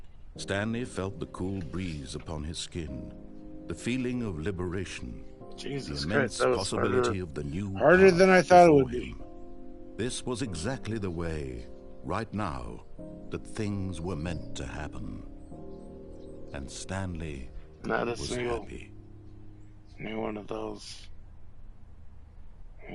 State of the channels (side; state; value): both; identical; correlation 1.00